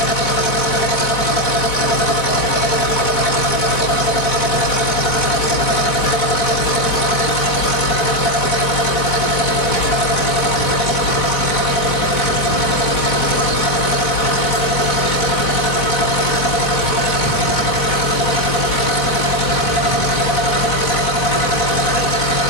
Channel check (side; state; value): right; late; 4.1 ms